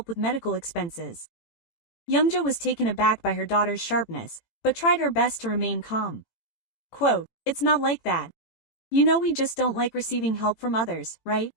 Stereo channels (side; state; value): right; late; 18 ms